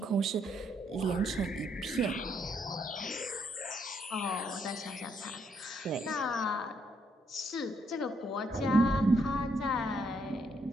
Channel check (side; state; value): both; normal; correlation 0.73